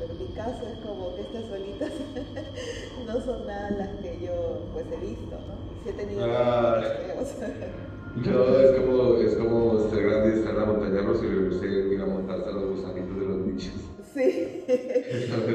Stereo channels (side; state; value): both; identical; correlation 1.00